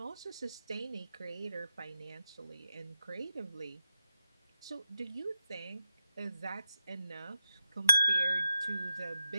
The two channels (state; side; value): inverted; both; correlation -0.87